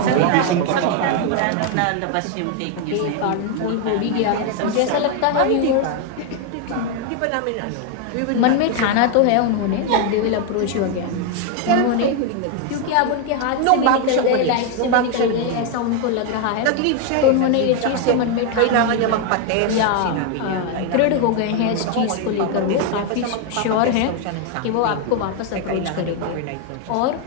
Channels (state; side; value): different; both; correlation 0.01